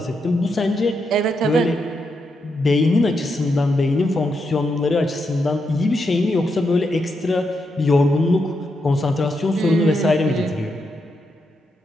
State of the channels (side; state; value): both; normal; correlation 0.83